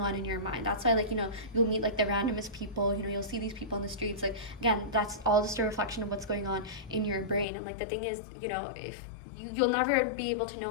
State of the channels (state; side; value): drops out; right; at 7.5 s